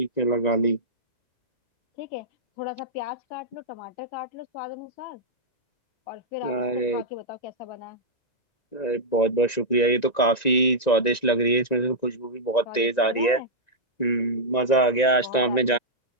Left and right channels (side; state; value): right; late; 1.9 ms